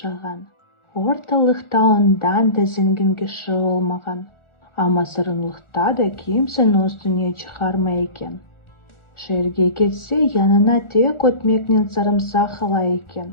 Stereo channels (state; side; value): late; right; 1.4 ms